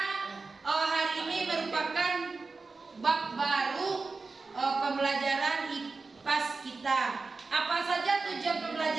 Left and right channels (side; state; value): left; quieter; 4.0 dB